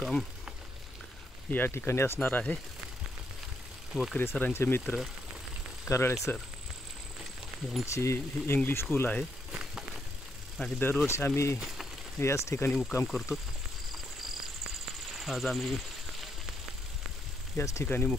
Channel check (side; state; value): both; normal; correlation 0.77